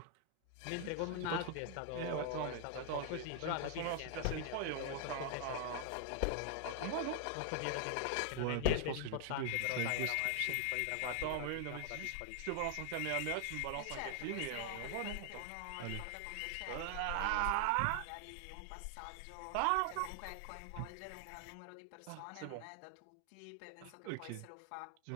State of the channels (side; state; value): both; different; correlation 0.00